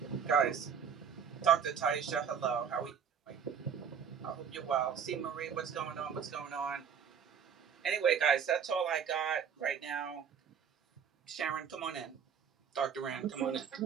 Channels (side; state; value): left; quieter; 7.4 dB